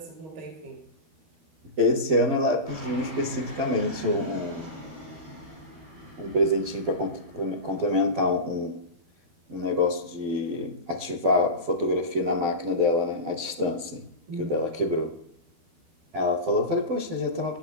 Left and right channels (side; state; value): left; late; 12 ms